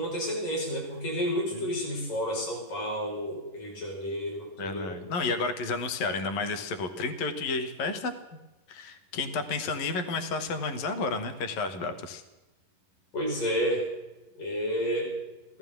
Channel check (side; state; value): right; late; 11 ms